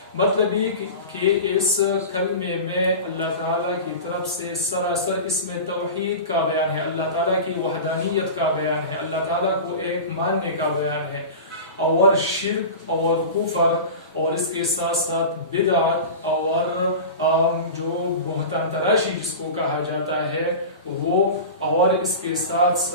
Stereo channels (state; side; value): inverted; both; correlation -0.31